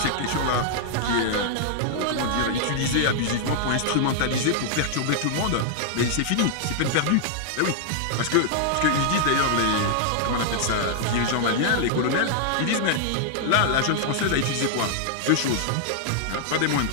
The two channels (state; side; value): different; both; correlation -0.01